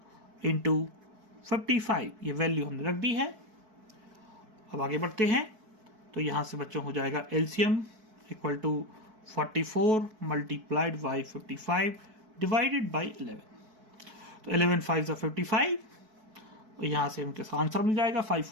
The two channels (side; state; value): left; late; 4.6 ms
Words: इंटू 55 ये वैल्यू हमने रख दी है। अब आगे बढ़ते हैं तो यहां से बच्चों हो जाएगा LCM equal to 44 multiplied by 55 divided by 11। तो 11 5 ज़ा 55 और यहाँ से हमके आंसर मिल जाएगा 5